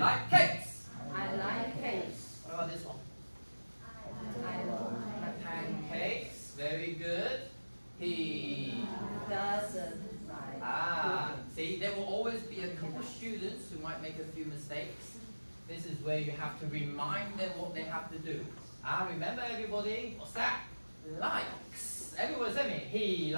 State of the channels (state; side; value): inverted; both; correlation -1.00